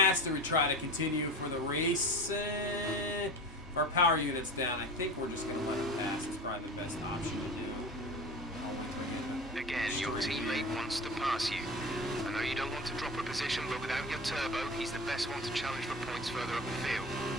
Do we try to continue for the race? If our power unit's down, I think we're just going to let him pass. It's probably the best option to do. Again, your teammate wants to pass you. I know you don't want to drop a position, but without your turbo, he's the best one to challenge for points further up the field.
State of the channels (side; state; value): both; normal; correlation 0.32